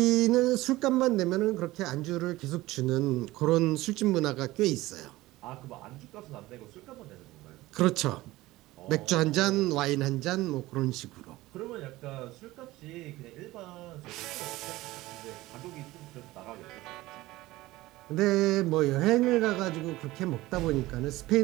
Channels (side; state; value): left; quieter; 18.2 dB